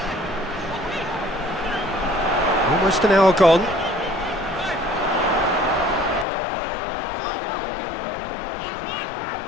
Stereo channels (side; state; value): right; drops out; at 6.2 s